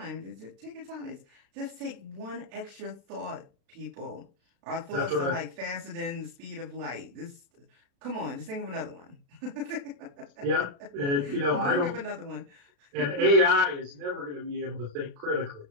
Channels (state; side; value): late; left; 36 ms